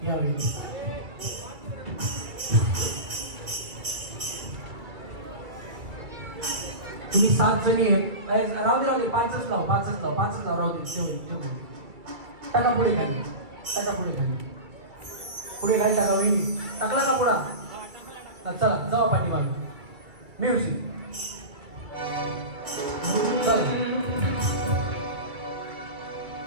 या वहिनी तुम्ही 7 जणी आहेत राहू दे 5च लाव राहू दे ठेवून टाका पुढे खाली पुढे खाली टाका वहिनी टाकला का पुढा चला जावा पाठी मागे म्युझिक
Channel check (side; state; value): left; late; 2.3 ms